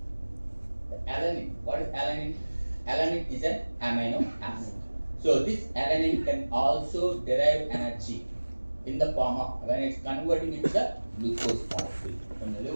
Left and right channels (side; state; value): both; inverted; correlation -1.00